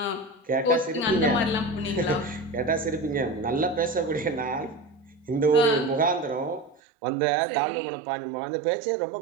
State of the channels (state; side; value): drops out; left; at 6.8 s